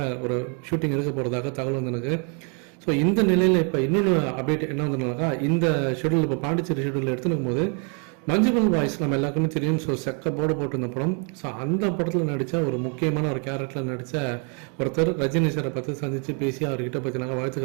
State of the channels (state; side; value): quieter; left; 38.3 dB